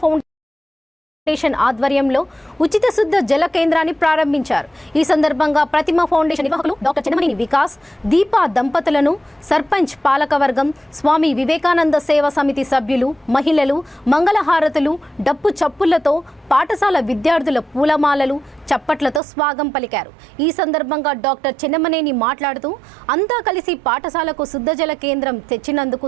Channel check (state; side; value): drops out; left; at 19.2 s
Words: ఫౌండేషన్ ఆధ్వర్యంలో ఉచిత శుద్ధ జల కేంద్రాన్ని ప్రారంభించారు. ఈ సందర్భంగా ప్రతిమ ఫౌండేషన్ నిర్వాహకులు డాక్టర్ చెన్నమనేని వికాస్, దీపా దంపతులను సర్పంచ్ పాలకవర్గం, స్వామి వివేకానంద సేవా సమితి సభ్యులు, మహిళలు మంగళహారతులు, డప్పు చప్పులతో పాఠశాల విద్యార్థుల పూలమాలలు, చప్పట్లతో స్వాగతం పలికారు. ఈ సందర్భంగా డాక్టర్ చెన్నమనేని మాట్లాడుతూ అంతా కలిసి పాఠశాలకు శుద్ధజల కేంద్రం తెచ్చినందుకు